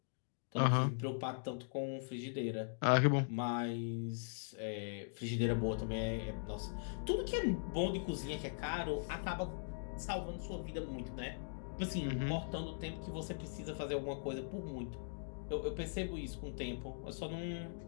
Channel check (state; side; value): silent; right; digital silence